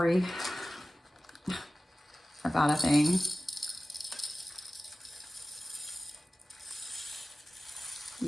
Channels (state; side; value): normal; both; correlation 0.97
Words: about a thing.